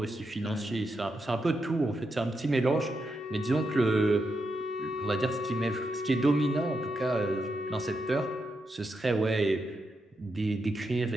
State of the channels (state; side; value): normal; both; correlation 0.84